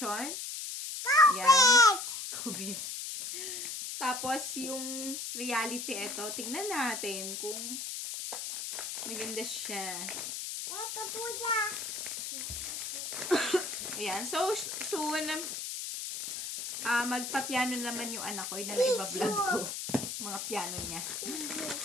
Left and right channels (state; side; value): noise; left; hiss, 5 dB below the sound